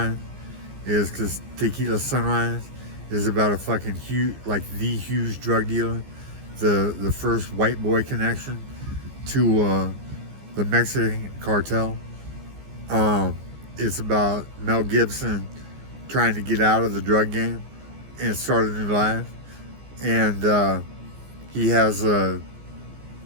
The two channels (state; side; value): late; left; 15 ms